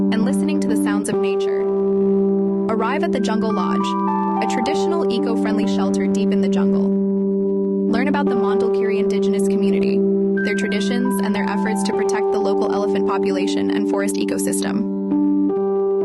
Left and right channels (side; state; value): both; identical; correlation 1.00